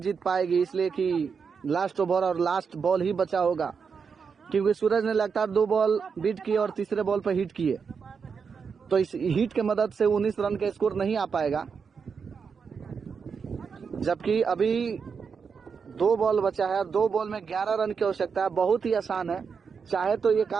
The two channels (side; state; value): left; quieter; 5.9 dB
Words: पाएगी, इसलिए कि लास्ट ओवर और लास्ट बॉल ही बचा होगा, क्योंकि सूरज ने लगातार 2 बॉल बीट किए और तीसरे बॉल पर हिट किए। तो इस हिट के मदद से 19 रन का स्कोर नहीं आ पाएगा, जबकि अभी 2 बॉल बचा है। 2 बॉल में 11 रन की आवश्यकता है। बहुत ही आसान है, चाहे तो ये